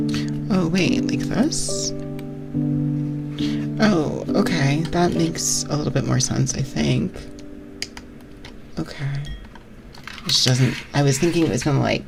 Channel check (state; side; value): identical; both; correlation 1.00